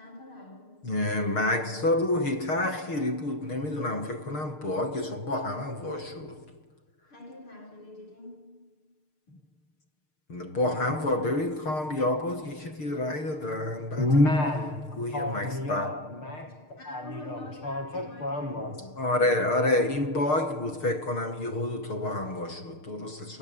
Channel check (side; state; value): right; late; 6.6 ms